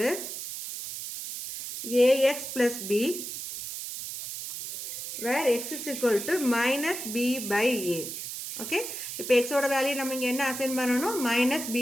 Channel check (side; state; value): right; noise; hiss, 7 dB below the sound